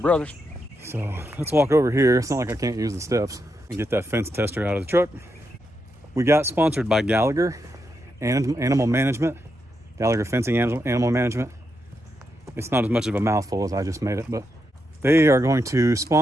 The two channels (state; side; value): normal; both; correlation 0.83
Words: So let's walk over here. It's not like I can't use the steps and get that fence tester out of the truck. We got sponsored by Gallagher Animal Management. Gallagher Fencing Animal Management. It's not as much of a mouthful as I just made it, but they are going to